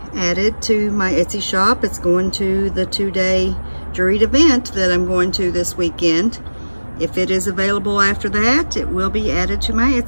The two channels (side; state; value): both; inverted; correlation -1.00